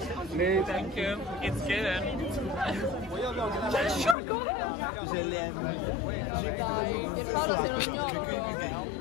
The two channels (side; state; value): right; drops out; at 4.2 s